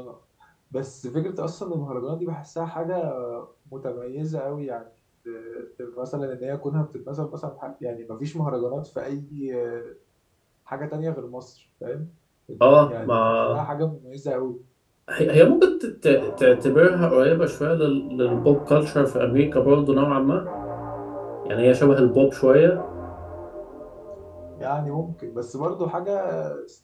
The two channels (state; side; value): identical; both; correlation 1.00